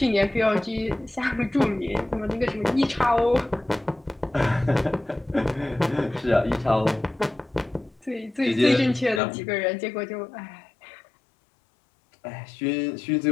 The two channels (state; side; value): drops out; right; at 9.2 s